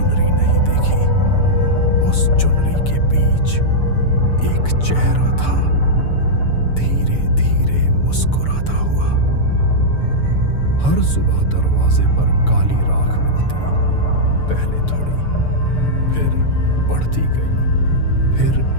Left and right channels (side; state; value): right; late; 6.8 ms